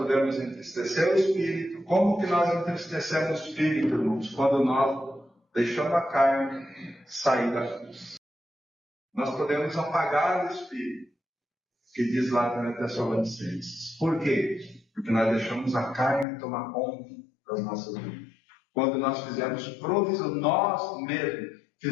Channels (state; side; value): drops out; right; at 16.2 s